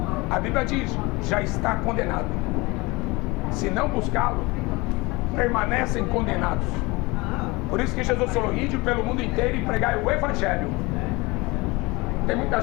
a Bíblia diz: já está condenado. Se não buscá-lo, permanecem condenados. Por isso que Jesus falou: ide pelo mundo inteiro e pregai o Evangelho. Tem muita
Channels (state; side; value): quieter; right; 24.1 dB